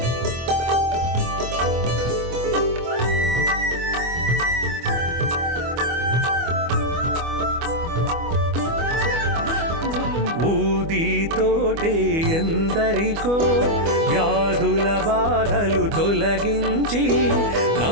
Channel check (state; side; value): late; left; 25 ms